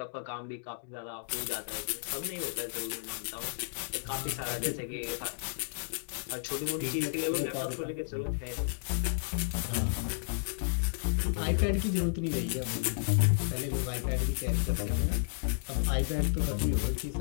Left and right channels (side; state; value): right; silent; digital silence